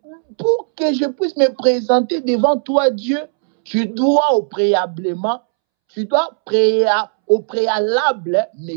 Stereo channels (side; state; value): left; silent; 68 dB below the other